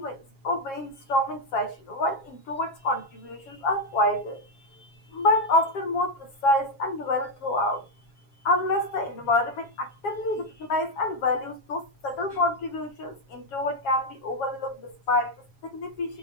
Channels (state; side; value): late; right; 7.3 ms